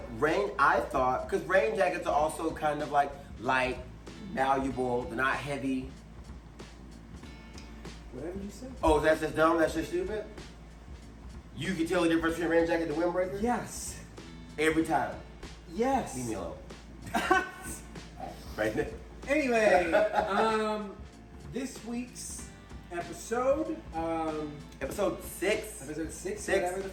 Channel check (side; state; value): both; identical; correlation 1.00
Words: thought because rain jackets are also kind of like light, malleable, they're not heavy. Whatever you say. Oh, that's just dumb? That's just stupid? You can tell the difference between a rain jacket and a windbreaker? Yes. Every time. Yes. Leave me alone. Right there. Anyway, this week's episode, episode 6. Episode 6, whatever the